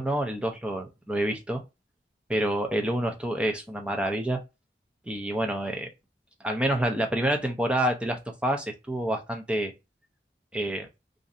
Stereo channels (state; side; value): normal; both; correlation 0.75